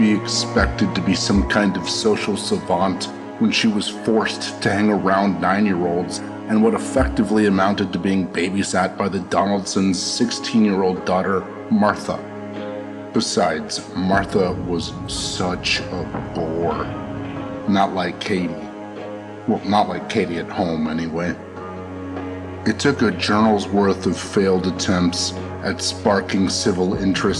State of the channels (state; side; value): identical; both; correlation 1.00